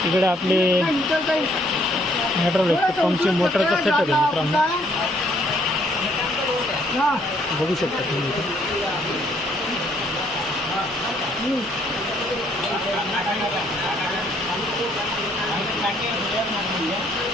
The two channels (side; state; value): both; normal; correlation 0.66